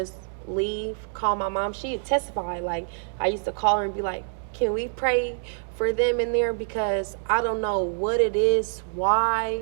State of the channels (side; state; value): left; silent; digital silence